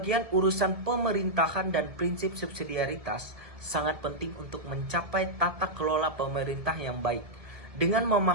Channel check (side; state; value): left; late; 1.7 ms